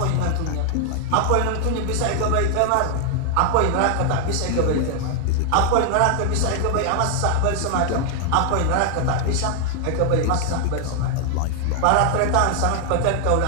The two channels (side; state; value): both; different; correlation 0.00